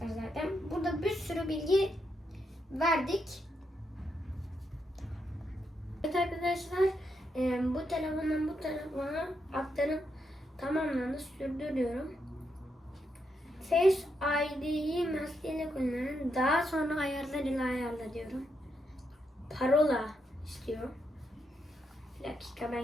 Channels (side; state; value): both; normal; correlation 0.81